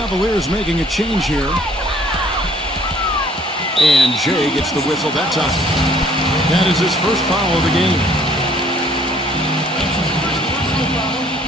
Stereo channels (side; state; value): both; normal; correlation 0.59